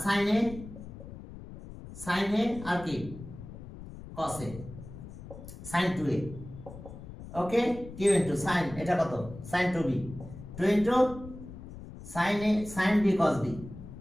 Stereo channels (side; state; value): left; noise; rumble, 13 dB below the sound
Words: সাইন এ আর কি cos A, sine 2a। Okay, q into sine, এটা কত, sine 2b, 2 into sine b cos b,